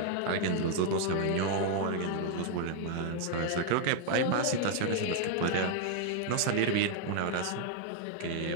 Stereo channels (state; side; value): different; both; correlation 0.00